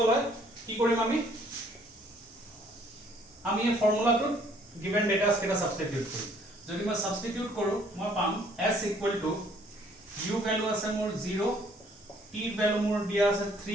है কি কৰিম আমি এই ফৰ্মুলাটো given data কেটা সাবস্টিটিউট কৰিম যদি মই সাবস্টিটিউট কৰো মই পাম s equal to u value আছে মোৰ 0 t value মোৰ দিয়া আছে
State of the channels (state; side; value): normal; both; correlation 0.62